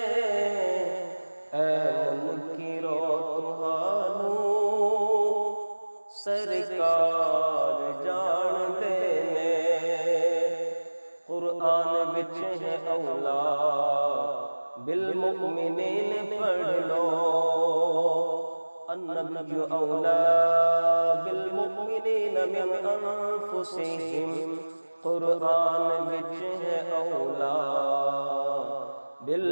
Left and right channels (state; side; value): inverted; both; correlation -1.00